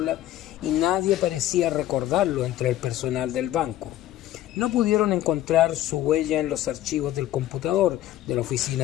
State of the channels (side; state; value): right; quieter; 13.6 dB